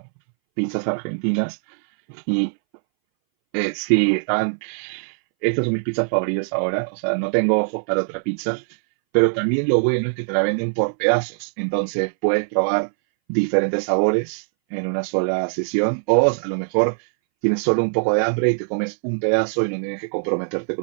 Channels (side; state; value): left; silent; 62 dB below the other